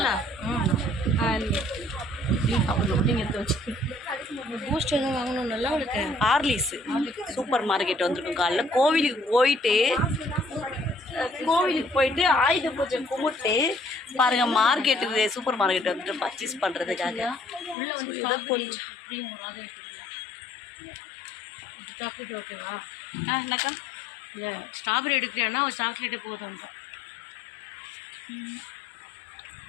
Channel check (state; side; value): drops out; right; at 17.8 s